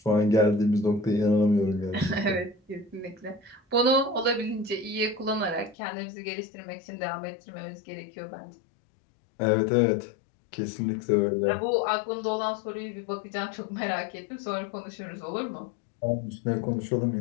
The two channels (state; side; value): drops out; right; at 5.8 s